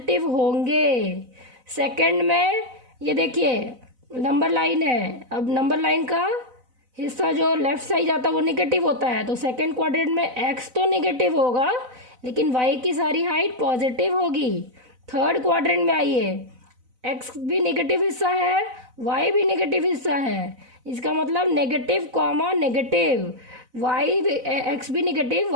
होंगे। सेकंड में ये देखिए नंबर लाइन है, अब नंबर लाइन का हिस्सा जो लेफ्ट साइड जाता है वो निगेटिव होता है, तो सेकंड क्वाड्रेंट में एक्स तो निगेटिव होगा लेकिन वाई की सारी हाइट पॉजिटिव होगी। थर्ड क्वाड्रेंट में आइए, एक्स भी निगेटिव हिस्सा है, वाई भी निगेटिव हिस्सा है, इसका मतलब negative comma negative, Y X भी निगेटिव,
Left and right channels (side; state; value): left; late; 4.0 ms